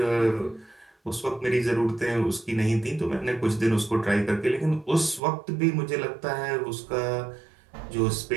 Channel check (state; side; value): drops out; left; at 5.2 s